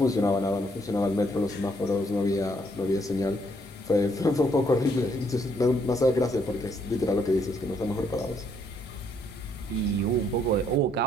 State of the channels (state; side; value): normal; both; correlation 0.70